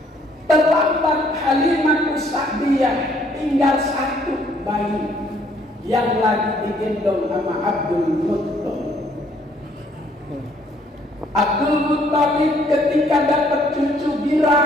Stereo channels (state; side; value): normal; both; correlation 0.64